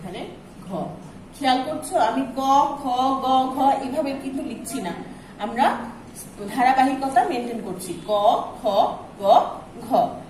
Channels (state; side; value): identical; both; correlation 1.00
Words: ঘ। খেয়াল করছো, আমি ক, খ, গ, ঘ এভাবে কিন্তু লিখছি না, আমরা ধারাবাহিকতা মেনটেন করছি। ক, খ, গ, ঘ।